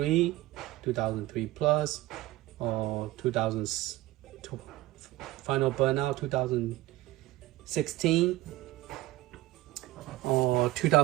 2003 plus, or 2000 Final Burnout 2016 or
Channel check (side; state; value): left; quieter; 17.0 dB